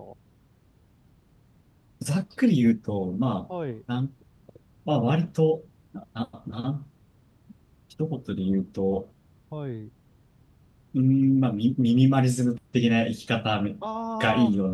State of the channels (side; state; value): both; identical; correlation 1.00